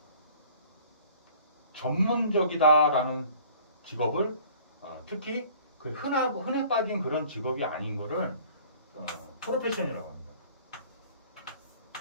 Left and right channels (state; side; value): inverted; both; correlation -0.51